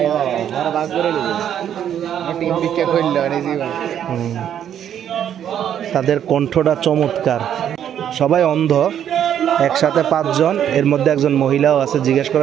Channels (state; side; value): quieter; left; 9.7 dB